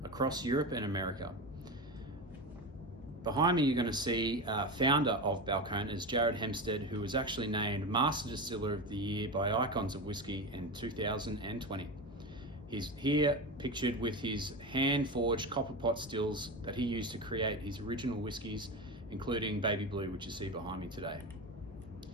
across Europe and America. Behind me, you're going to see founder of Balcones, Jared Hempstead, who was actually named Master Distiller of the Year by Icons of Whiskey in 2020. He's here pictured with his hand-forged copper pot stills that he used to create his original whiskies, including Baby Blue, which you see behind me today.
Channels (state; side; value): normal; both; correlation 0.22